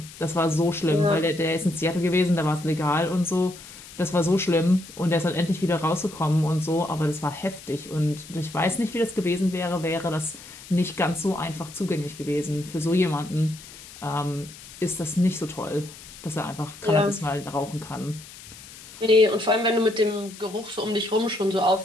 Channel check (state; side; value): noise; left; hiss, 17 dB below the sound